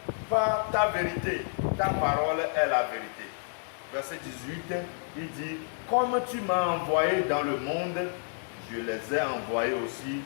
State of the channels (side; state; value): right; silent; 58 dB below the other